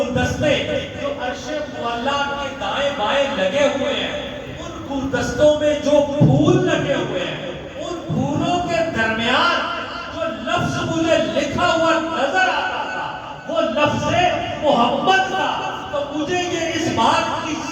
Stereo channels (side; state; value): both; identical; correlation 1.00